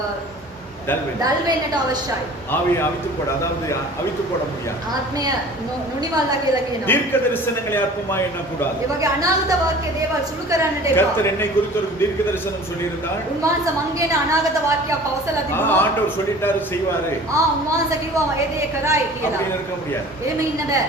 டல் வேண்டும். දල් වෙන්නට අවශ්‍යයි. ஆவியை அவித்து போட, அதாவது அவித்து போட முடியாது. ආත්මය නොනිවල්ලා කියලා කියනවා. தீர்க்க தரிசனங்களை அற்பமாய் எண்ணக்கூடாது. ඒ වගේ අනාගත වාක්‍ය දේවල් සුළු කරන්නට එපා. கர்த்தர் என்னை குறித்து ஒரு தீர்க்க தரிசனம் சொல்லியிருந்தார். උන්වහන්සේ මං කියන අනාගත වාක්‍යයක් පවසලා තිබුණා. ஆண்டவர் சொல்லிட்டாரு செய்வாரு උන්වහන්සේ කිව්වා ඒ දේ කරයි කියලා. அப்படின்னு இருக்க முடியாது. එහෙම ඉන්න බෑ.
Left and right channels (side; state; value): both; normal; correlation 0.44